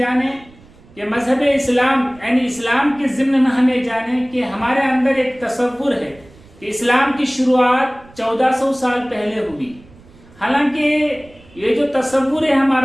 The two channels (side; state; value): right; noise; rumble, 25 dB below the sound